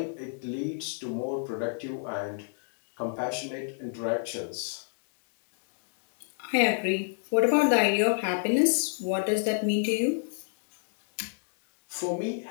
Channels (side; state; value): right; silent; digital silence